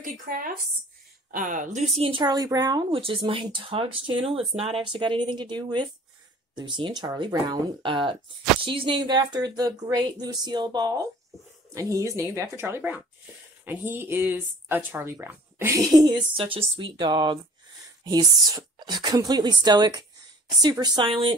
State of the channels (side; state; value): both; normal; correlation 0.48